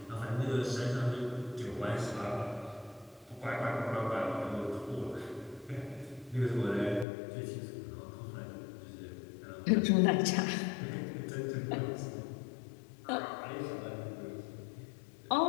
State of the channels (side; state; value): right; drops out; at 7.1 s